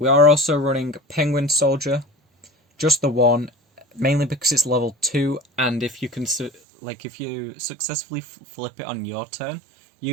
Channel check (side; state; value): left; drops out; at 6.5 s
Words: are also running Penguin Soldier, just the one, mainly because it's level 2, and if you can, if you successfully flip it on your turn,